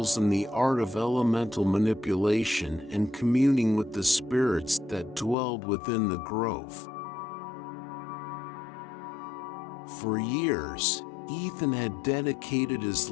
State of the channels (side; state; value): right; drops out; at 5.4 s